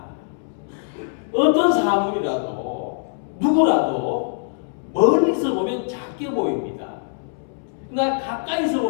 어떤 사물이라도 누구라도 멀리서 보면 작게 보입니다. 그러나 가까이서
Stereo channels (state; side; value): silent; right; 64 dB below the other